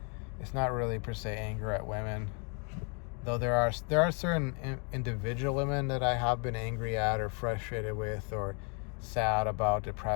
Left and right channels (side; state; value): right; quieter; 37.0 dB